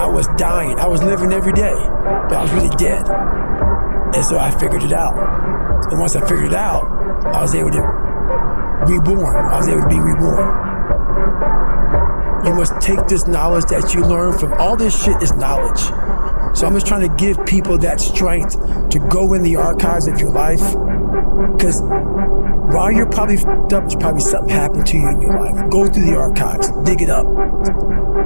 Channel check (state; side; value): inverted; both; correlation -1.00